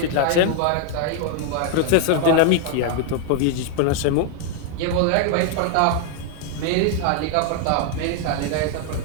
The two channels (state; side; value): different; both; correlation 0.00